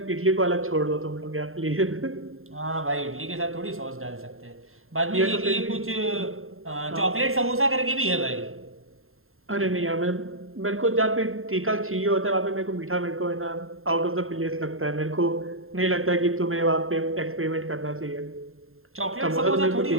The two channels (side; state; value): left; late; 0.61 ms